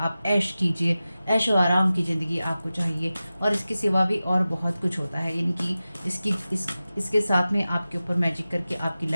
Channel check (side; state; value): both; inverted; correlation -0.95